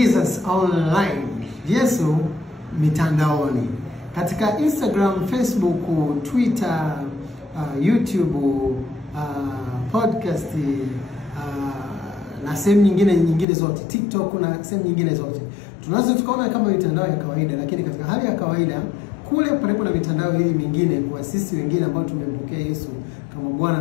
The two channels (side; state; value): right; drops out; at 13.5 s